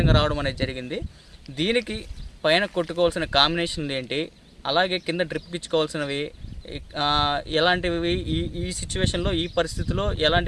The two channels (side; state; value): both; identical; correlation 1.00